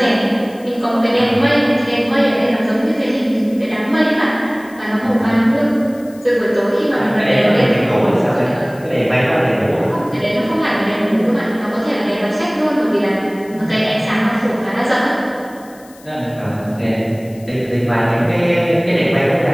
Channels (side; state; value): left; noise; hiss, 25 dB below the sound